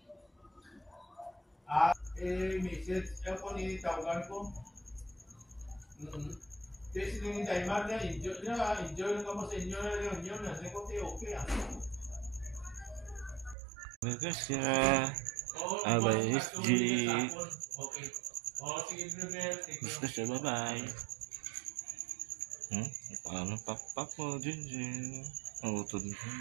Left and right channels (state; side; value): drops out; left; at 13.6 s